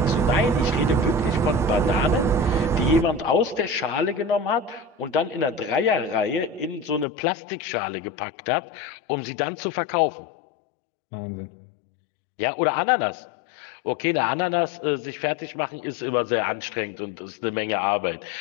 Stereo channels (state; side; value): drops out; right; at 7.1 s